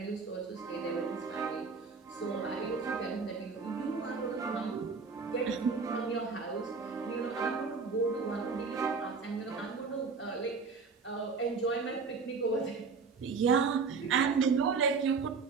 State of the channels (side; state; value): left; quieter; 4.9 dB